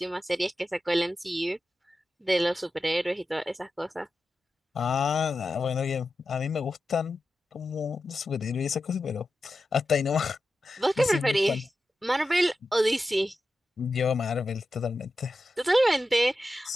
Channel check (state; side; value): normal; both; correlation 0.91